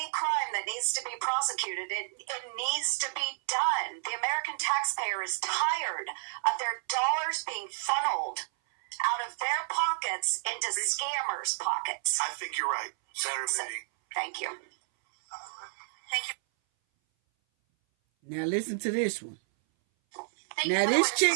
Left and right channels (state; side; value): silent; left; 57 dB below the other